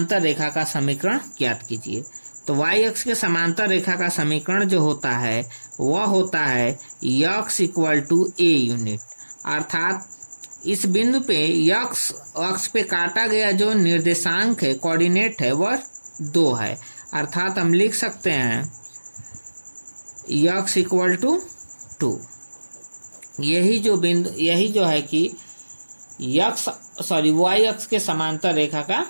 रेखा का समीकरण ज्ञात कीजिए। तो y अक्ष के समांतर रेखा का समीकरण जो होता है वह होता है x = a यूनिट। अर्थात इस बिंदु पे x अक्ष पे काटा गया जो निर्देशांक है, कोऑर्डिनेट है, वह 2 है। अर्थात हम लिख सकते हैं x = 2। यही जो है कि y अक्ष के समांतर रेखा का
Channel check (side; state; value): both; inverted; correlation -1.00